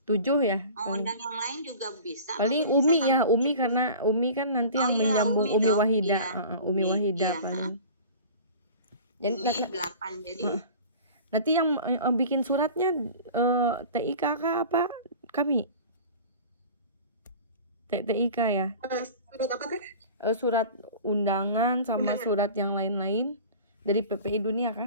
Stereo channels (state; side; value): inverted; both; correlation -0.40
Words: 7 ya? Mau undang yang lain juga bisa. Paling Umi ya, Umi karena Umi kan nanti yang menyambung Umi Wahida. Umi Wahida paling. Jadi 8 jadi. Nanti yang bikin suratnya TIKK apa kami? TIK ya? Surat apa Teh? Surat undangan sama surat yang lain-lain dari PPI dunia kah?